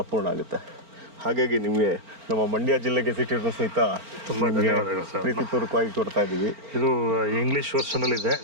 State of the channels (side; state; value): left; late; 4.4 ms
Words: ಅಪೂರ್ಣ ಆಗುತ್ತೆ. ಹಾಗಾಗಿ ನಿಮಗೆ ನಮ್ಮ ಮಂಡ್ಯ ಜಿಲ್ಲೆ ಗೆಜೆಟಿಯರ್ನ ಸಹಿತ ತುಂಬ ಧನ್ಯವಾದಗಳು ಸರ್. ಪ್ರೀತಿಪೂರ್ವಕವಾಗಿ ಕೊಡ್ತಾ ಇದ್ದೀವಿ. ಇದು ಇಂಗ್ಲೀಷ್ ವರ್ಷನಲ್ಲಿ ಇದೆ,